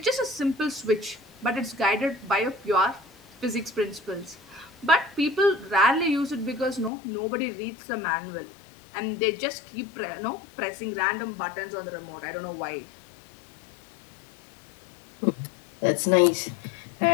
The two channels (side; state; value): right; drops out; at 6.9 s